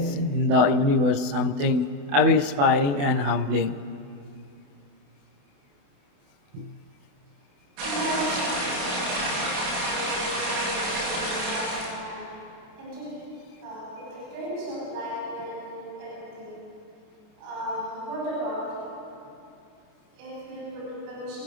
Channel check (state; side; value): late; left; 28 ms